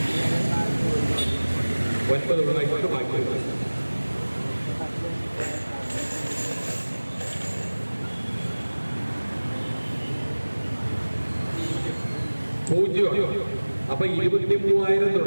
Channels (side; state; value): both; inverted; correlation -1.00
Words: 9 ഉള്ളതായിട്ട് ബാക്കിയുള്ളത്. അപ്പൊ 23,000